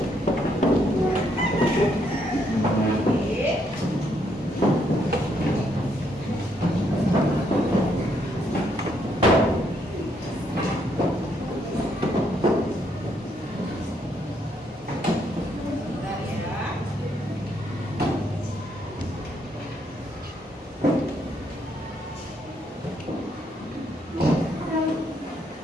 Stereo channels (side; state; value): both; normal; correlation 0.73